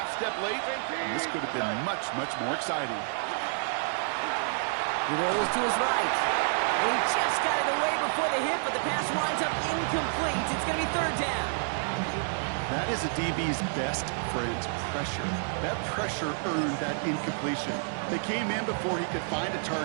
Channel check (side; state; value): left; silent; digital silence